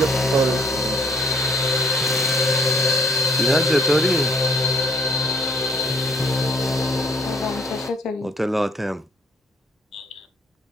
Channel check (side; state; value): both; normal; correlation 0.63